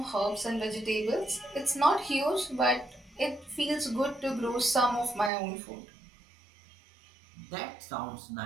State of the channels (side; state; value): left; drops out; at 5.3 s